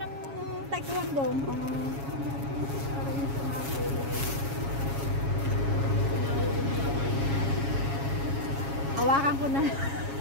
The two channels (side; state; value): left; late; 7.3 ms